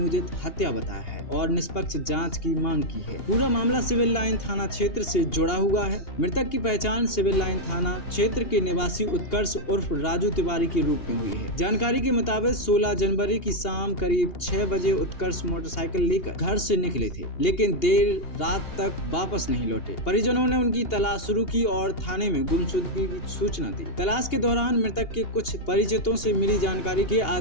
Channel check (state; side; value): late; right; 2.8 ms